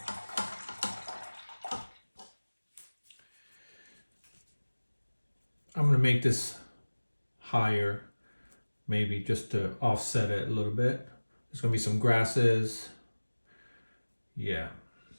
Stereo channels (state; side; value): inverted; both; correlation -1.00